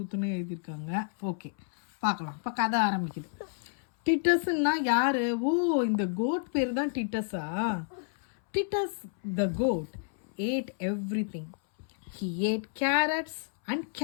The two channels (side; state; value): right; silent; 58 dB below the other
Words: எழுதியிருக்காங்க. ஓகே, பார்க்கலாம். இப்போ கதை ஆரம்பிக்குது. டிட்டஸ்ன்னா யாரு? ஓ, இந்த கோட் பேர் தான் டிட்டஸா? Titus the goat ate everything. He ate carrots and